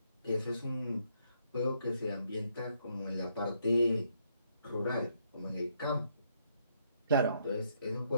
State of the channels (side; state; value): both; inverted; correlation -0.73